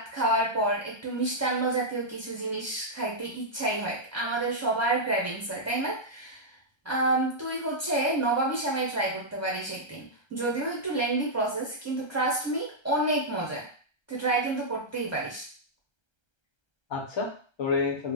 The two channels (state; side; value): late; right; 1.3 ms